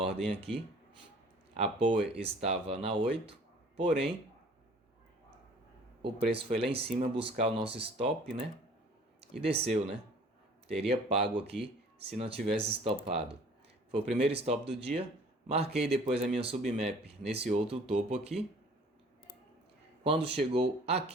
aqui. A Power estava na 8, porém o preço foi lá em cima buscar o nosso stop, né? E desceu, né? Teria pago aqui se não tivesse stopado. Foi o primeiro stop do dia. Marquei depois a minha submap nesse outro topo aqui. Quando chegou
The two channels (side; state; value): both; normal; correlation 0.51